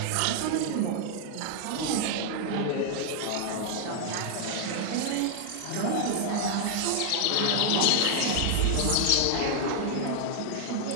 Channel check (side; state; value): both; different; correlation 0.00